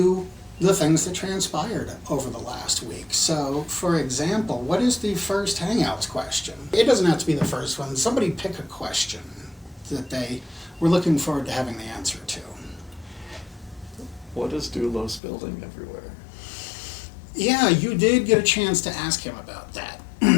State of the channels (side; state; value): right; drops out; at 15.2 s